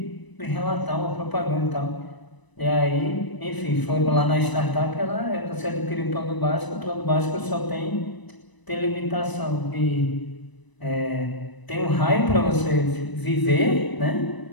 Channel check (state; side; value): late; right; 1.0 ms